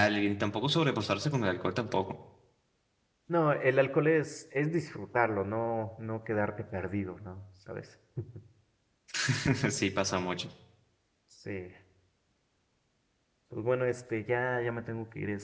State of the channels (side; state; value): both; identical; correlation 1.00